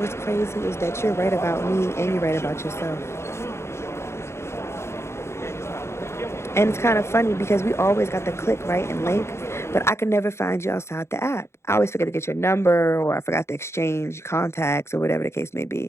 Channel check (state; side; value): late; right; 0.13 ms